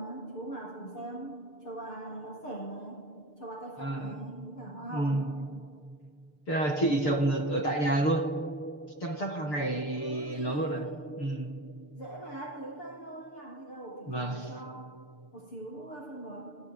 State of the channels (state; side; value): late; right; 6.7 ms